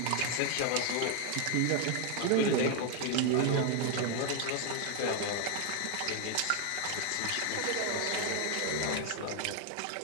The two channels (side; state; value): both; different; correlation 0.01